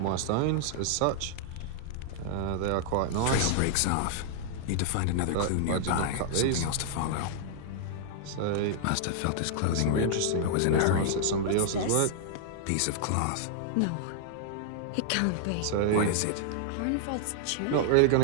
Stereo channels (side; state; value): both; different; correlation -0.01